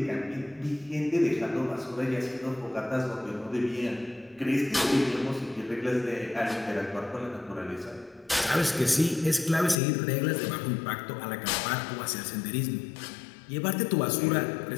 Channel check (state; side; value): drops out; right; at 9.8 s